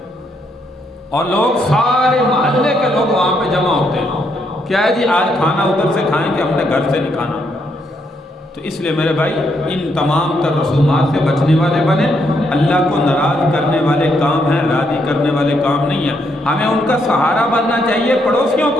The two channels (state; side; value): normal; both; correlation 0.75